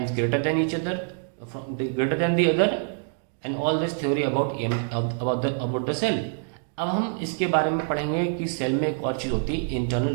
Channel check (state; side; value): silent; left; digital silence